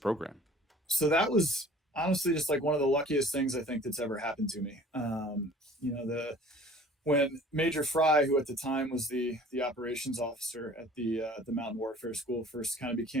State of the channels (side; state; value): both; normal; correlation 0.49